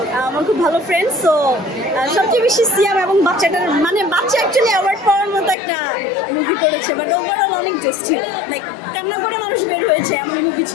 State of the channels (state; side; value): drops out; right; at 5.6 s